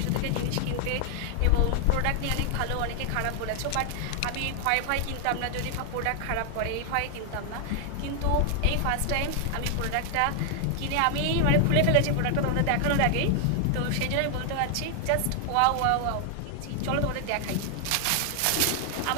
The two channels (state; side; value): different; both; correlation 0.00